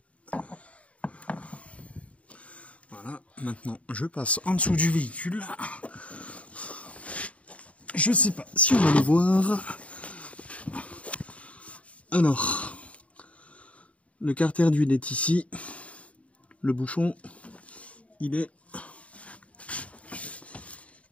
Voilà, maintenant je passe en dessous du véhicule. Je sais pas si on va le voir. Alors, le carter d'huile est ici. Le bouchon, il est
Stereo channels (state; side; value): late; right; 0.065 ms